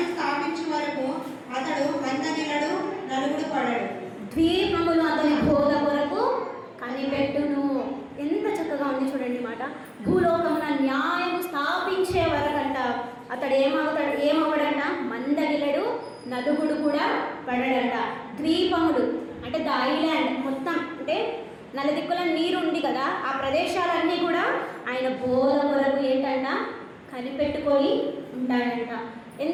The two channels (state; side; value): identical; both; correlation 1.00